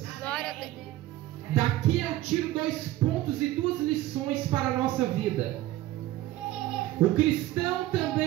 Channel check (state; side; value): quieter; left; 15.4 dB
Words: Glória a Deus. Daqui eu tiro 2 pontos e 2 lições para a nossa vida. O cristão